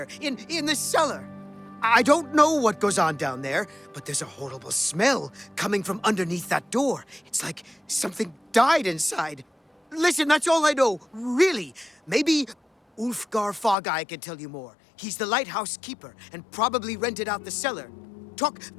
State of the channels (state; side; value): drops out; right; at 13.8 s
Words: in the cellar. I don't know what goes on down there, but there's a horrible smell coming from underneath that door. It's like something died inside. Listen, that's all I know, really. Maybe Ulfgar Fogeye can tell you more. He's the lighthouse keeper and probably rented out the cellar. Talk